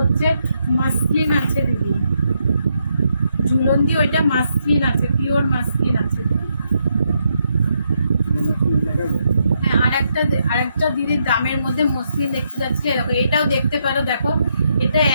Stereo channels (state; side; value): inverted; both; correlation -0.78